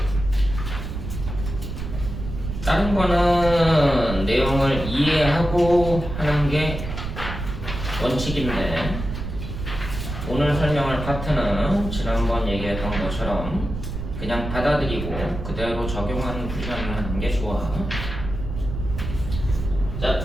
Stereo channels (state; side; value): noise; right; rumble, 6 dB below the sound